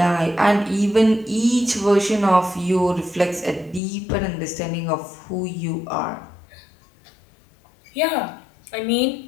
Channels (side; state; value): right; drops out; at 3.8 s